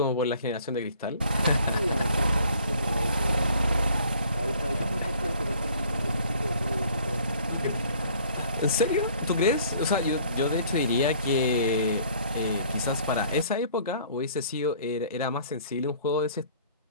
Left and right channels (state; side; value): inverted; both; correlation -0.55